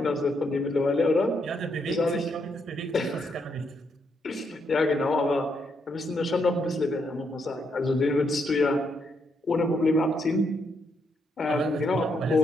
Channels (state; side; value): normal; both; correlation 0.77